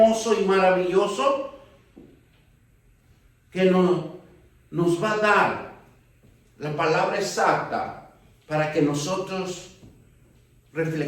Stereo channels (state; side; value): identical; both; correlation 1.00